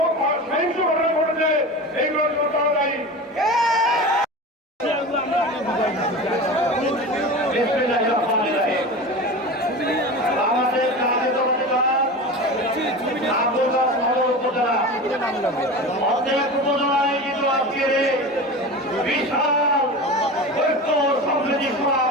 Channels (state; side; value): normal; both; correlation 0.30